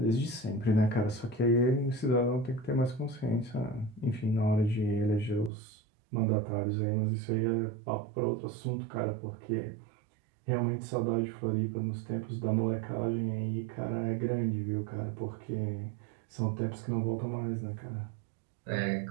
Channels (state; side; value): drops out; left; at 5.5 s